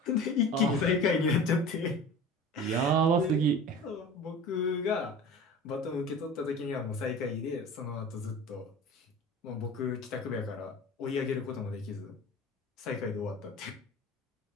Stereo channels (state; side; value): normal; both; correlation 0.37